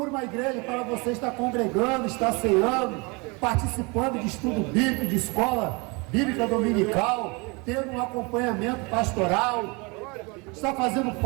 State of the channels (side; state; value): left; quieter; 28.6 dB